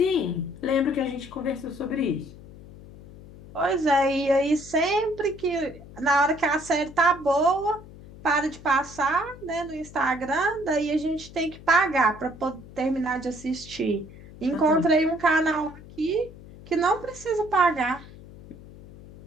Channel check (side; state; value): left; noise; hum, 18 dB below the sound